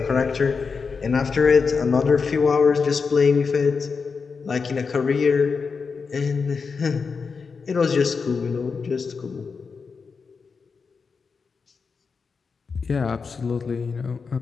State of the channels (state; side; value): quieter; right; 5.2 dB